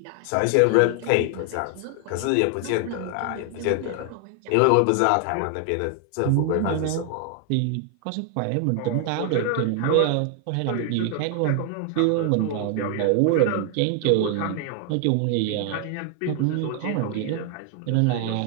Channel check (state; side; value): different; both; correlation 0.00